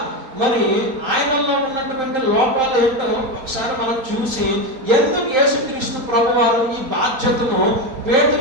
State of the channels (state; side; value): late; left; 3.9 ms